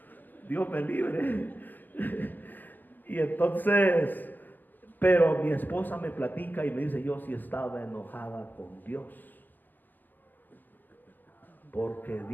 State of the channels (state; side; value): late; right; 0.088 ms